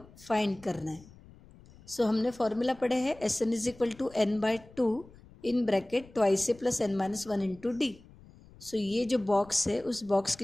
फाइंड करना है. सो हमने फॉर्मूला पढ़े हैं Sn is equal to n/2 in bracket twice से plus n minus 1 into D. So ये जो बॉक्स है उस बॉक्स की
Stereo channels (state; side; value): noise; left; rumble, 23 dB below the sound